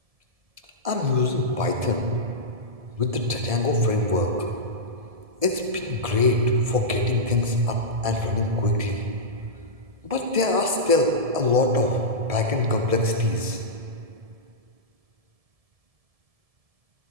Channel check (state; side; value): late; left; 1.7 ms